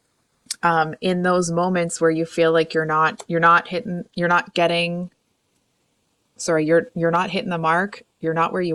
in those moments where you feel like you're not hitting the mark. You're not where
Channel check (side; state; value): both; identical; correlation 1.00